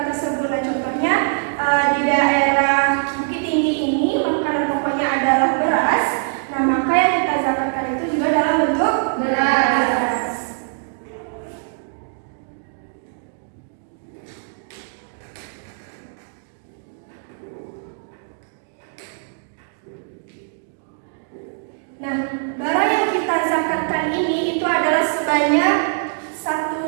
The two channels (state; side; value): silent; left; 62 dB below the other